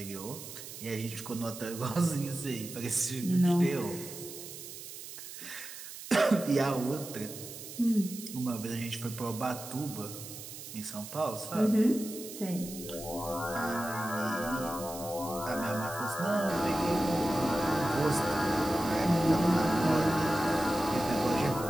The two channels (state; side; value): noise; right; hiss, 12 dB below the sound